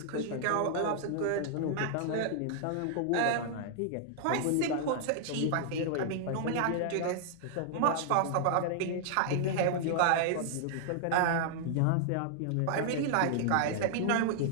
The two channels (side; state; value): both; different; correlation -0.01